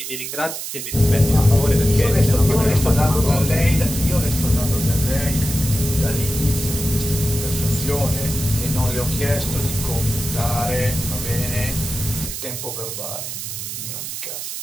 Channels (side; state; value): right; noise; hiss, 6 dB below the sound